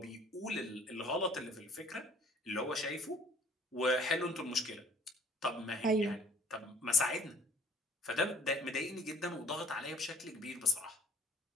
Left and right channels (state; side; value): normal; both; correlation 0.54